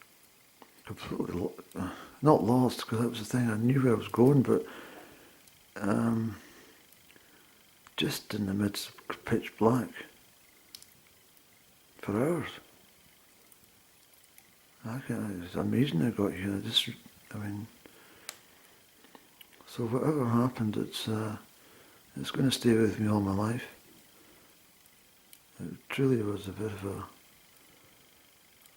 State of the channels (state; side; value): identical; both; correlation 1.00